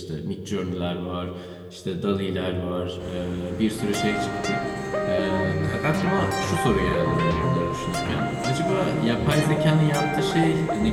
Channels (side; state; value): both; identical; correlation 1.00